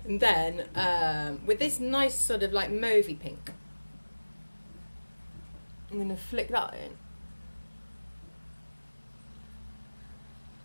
And then with this nice sort of like mauvey pink, I'm going to flick that in.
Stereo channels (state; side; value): inverted; both; correlation -1.00